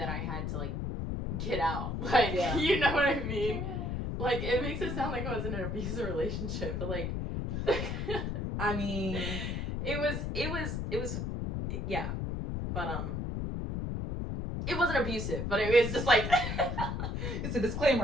I had to, like, get out. Like, yeah. You know what I mean? Like, it makes it sound like I was in an abusive relationship, but, like... I mean... It was... Yeah. But, it wasn't abusive, but it was just like... It's a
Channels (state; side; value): noise; left; rumble, 2 dB below the sound